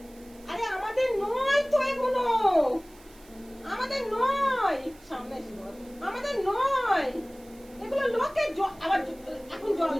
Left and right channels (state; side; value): noise; right; hiss, 26 dB below the sound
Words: আরে আমাদের নয় তো এগুলো, আমাদের নয়, সামনে আমাদের নয় এগুলো, লোকের। আবার এখন জল